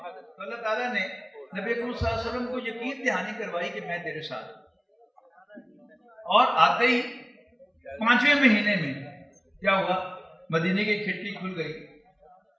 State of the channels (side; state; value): both; identical; correlation 1.00